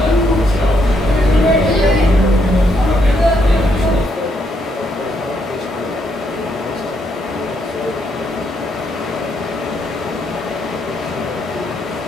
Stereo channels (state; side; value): normal; both; correlation 0.75